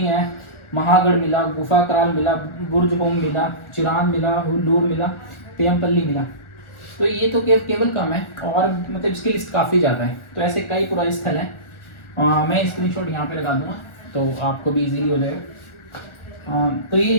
हैं, महागढ़ मिला, गुफा कराल मिला, बुर्ज होम मिला, चिरान मिला, हुल्लूर मिला, पेयमपल्ली मिला। तो ये तो केवल कम है, और मतलब इसकी लिस्ट काफ़ी ज़्यादा है। तो ऐसे कई पुराने स्थल हैं। मैं स्क्रीनशॉट यहाँ पे लगा दूंगा तो आपको भी इजीली हो जाएगा। तो ये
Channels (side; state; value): right; late; 1.4 ms